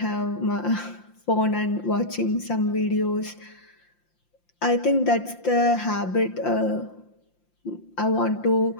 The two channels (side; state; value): right; late; 5.8 ms